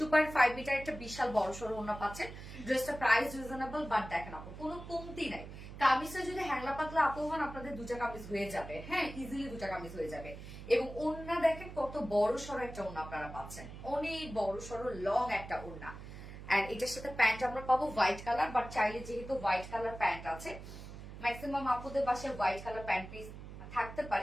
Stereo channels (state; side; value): noise; right; hum, 12 dB below the sound